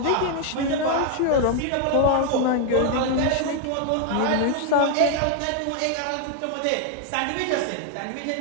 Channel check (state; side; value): different; both; correlation 0.00